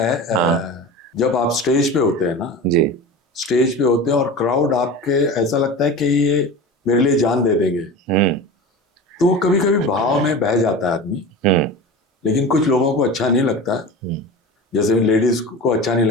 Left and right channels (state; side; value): normal; both; correlation 0.31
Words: जब आप स्टेज पे होते हैं ना जी, स्टेज पे होते हैं और क्राउड आपके ऐसा लगता है कि ये मेरे लिए जान दे देंगे, तो कभी कभी भाव में बह जाता है आदमी। लेकिन कुछ लोगों को अच्छा नहीं लगता, जैसे लेडीज को अच्छा नहीं